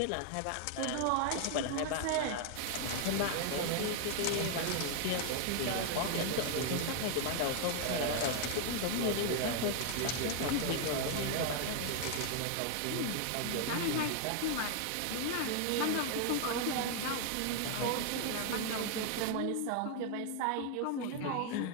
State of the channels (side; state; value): both; different; correlation 0.00